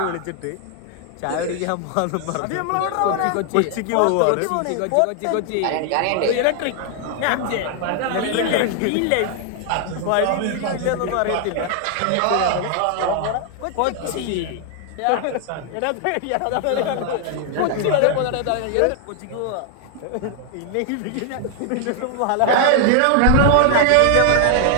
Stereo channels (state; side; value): different; both; correlation 0.00